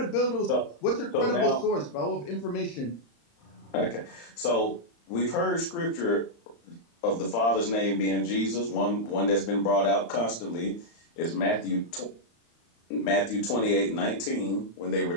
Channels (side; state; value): right; late; 35 ms